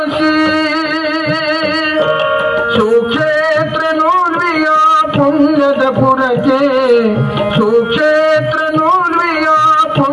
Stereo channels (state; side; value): identical; both; correlation 1.00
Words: ಸುಕ್ಷೇತ್ರ ನೂರ್ವಿಯ ಪುಣ್ಯದ ಪುರಕ್ಕೆ, ಸುಕ್ಷೇತ್ರ ನೂರ್ವಿಯ